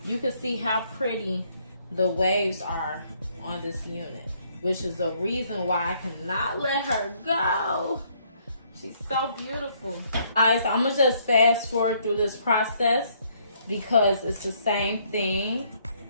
you can see how pretty the waves are on this unit, which is the reason why I cannot let her go. She's so beautiful. Alright, so I'm gonna just fast forward through this process because it's the same thing.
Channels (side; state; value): both; inverted; correlation -0.67